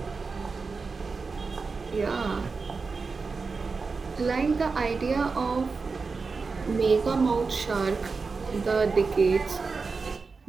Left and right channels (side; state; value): left; quieter; 4.5 dB